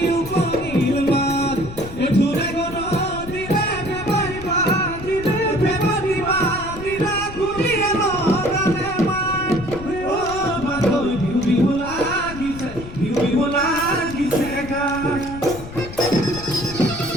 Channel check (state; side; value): noise; left; rumble, 12 dB below the sound